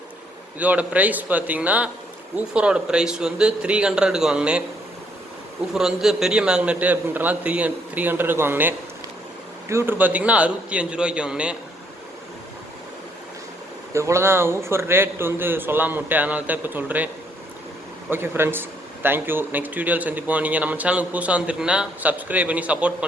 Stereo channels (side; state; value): both; normal; correlation 0.69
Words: இதோட ப்ரைஸ் பார்த்திங்கன்னா ஊஃபரோட ப்ரைஸ் வந்து 300க்கு வாங்கினேன். ஊஃபர் வந்து பெரிய மேக்னெட்டு அப்படின்றனால 300க்கு வாங்கினேன். டியூட்டர் பார்த்திங்கன்னா 65 ரூபாய்க்கு வாங்கினேன். இவ்வளோ தான் ஊஃபர் ரேட் வந்து சொல்லாம விட்டேன், அதனால தான் இப்போ சொல்கிறேன். Okay friends, thank you. நெக்ஸ்ட் வீடியோவில் சந்திப்போம். நீங்கள் நம்ம சேனலுக்கு புதுசாக வந்துருக்கீங்கன்னா சப்ஸ்கிரைப் பண்ணி சப்போர்ட்